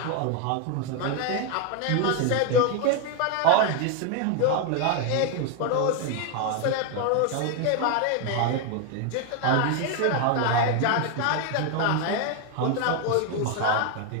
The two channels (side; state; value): both; different; correlation 0.01